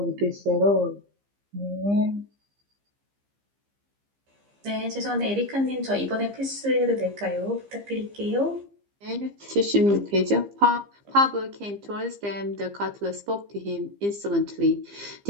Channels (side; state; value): left; late; 15 ms